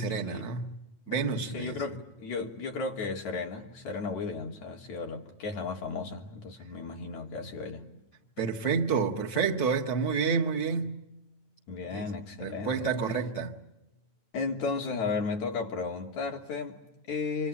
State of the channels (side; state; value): right; late; 9.1 ms